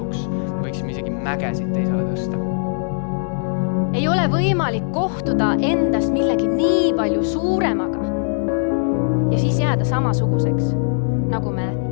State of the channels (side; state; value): right; silent; digital silence